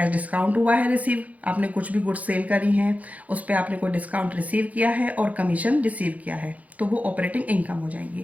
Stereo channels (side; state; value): left; late; 0.072 ms